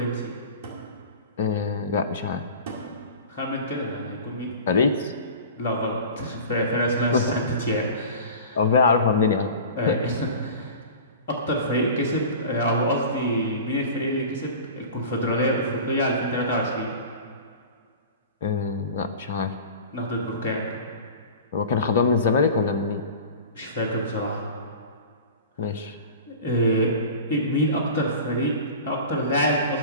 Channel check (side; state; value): both; inverted; correlation -0.37